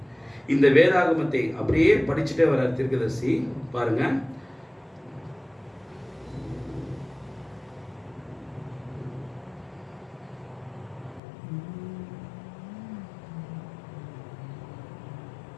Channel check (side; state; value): right; drops out; at 11.2 s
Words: இந்த வேதாகமத்தை அப்படியே படிச்சுட்டே வர தீர்க்கதரிசி பாருங்க.